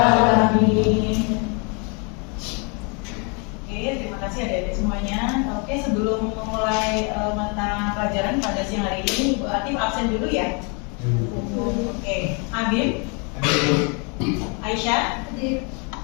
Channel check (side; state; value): right; quieter; 34.1 dB